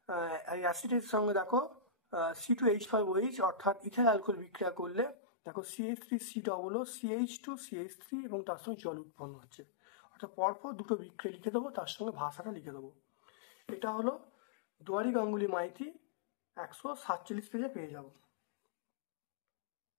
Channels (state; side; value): drops out; right; at 5.2 s